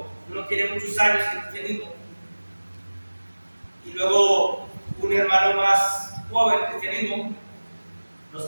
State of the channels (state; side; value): inverted; both; correlation -1.00